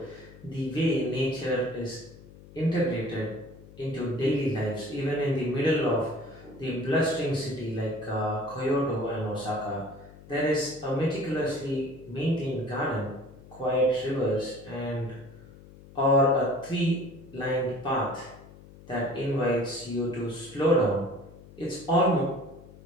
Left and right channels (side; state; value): left; noise; hum, 20 dB below the sound